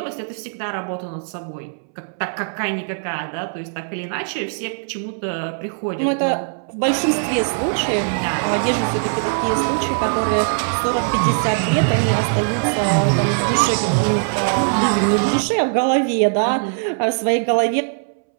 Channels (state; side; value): silent; left; 65 dB below the other